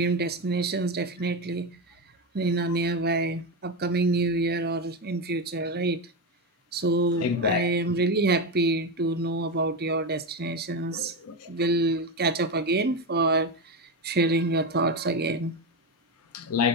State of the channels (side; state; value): both; normal; correlation 0.14